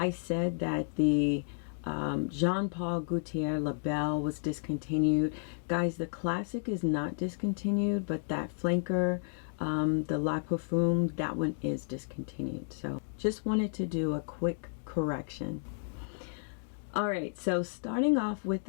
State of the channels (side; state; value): right; silent; digital silence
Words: said that the Jean-Paul Gaultier La Belle was discontinued. Guys, the classic is not discontinued, but that flanker, the La Parfum, that one is discontinued. So just wanted to do a quick correction. Alright, so starting off with